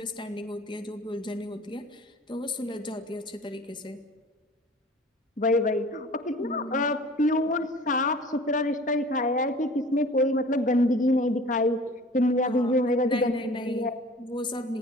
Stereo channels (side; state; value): both; normal; correlation 0.45